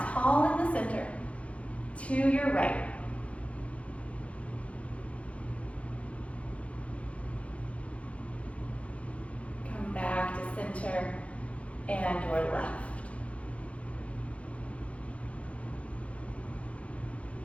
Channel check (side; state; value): right; late; 0.063 ms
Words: tall in the center. To your right. Come back to center and your left.